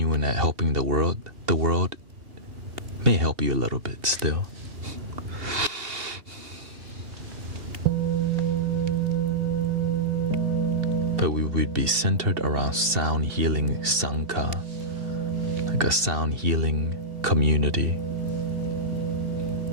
at helping the world may help you a little bit still. But we would be centered around sound healing Sangha, like a sound healing community.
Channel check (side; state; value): left; late; 2.7 ms